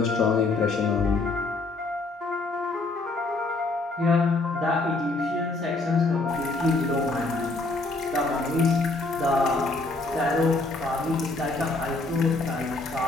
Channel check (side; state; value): right; quieter; 3.3 dB